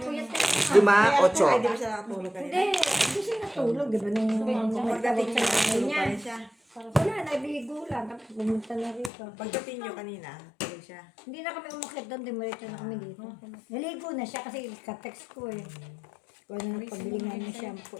yan. 5, 8. Hindi, hindi siya natulog, di ba? Nung magdating sa nanay niya. Wala, naligo lang. Tapos pumunta na rito. Pagdating nyo kanina, tulog siya. Hindi na kami umakit doon, dimaritso na kami dito. Naligo na siya kasi ka-text ko eh. Kung ano pabili nga ng shampoo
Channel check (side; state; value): right; drops out; at 9.1 s